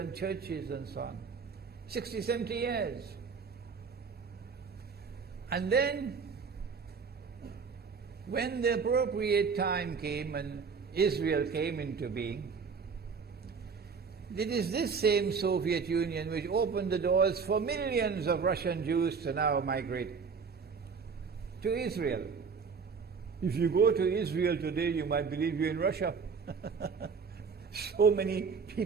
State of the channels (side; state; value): left; quieter; 5.6 dB